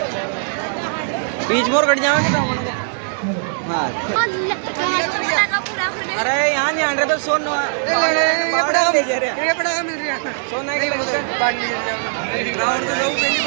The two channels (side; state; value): left; silent; digital silence